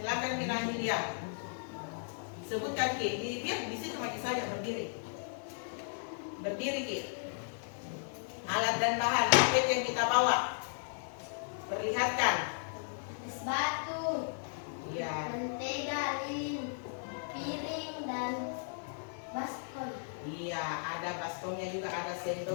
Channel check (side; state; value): right; silent; 54 dB below the other